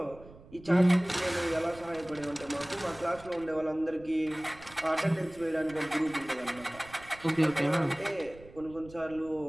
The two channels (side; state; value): right; noise; rumble, 20 dB below the sound